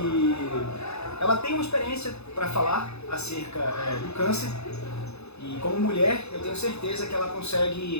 ela tem uma experiência para falar acerca do câncer. E como mulher, eu tenho certeza que ela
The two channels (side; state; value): right; late; 0.80 ms